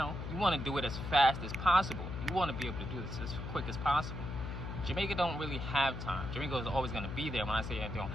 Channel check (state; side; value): noise; left; hum, 6 dB below the sound